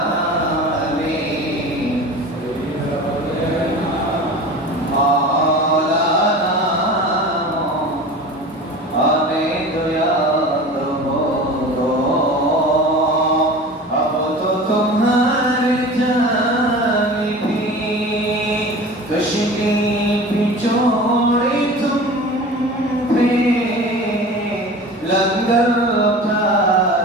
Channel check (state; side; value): normal; both; correlation 0.36